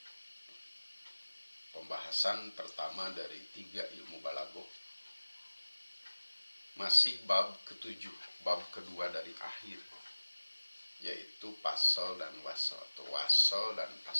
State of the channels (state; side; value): inverted; both; correlation -1.00